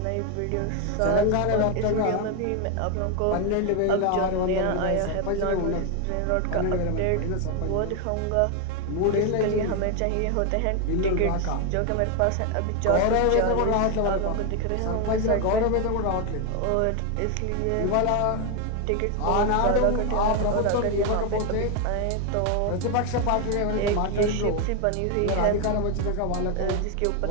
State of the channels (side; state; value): both; different; correlation 0.01